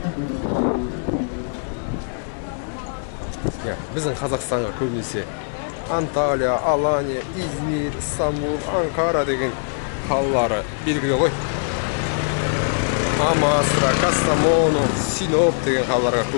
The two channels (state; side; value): silent; right; 60 dB below the other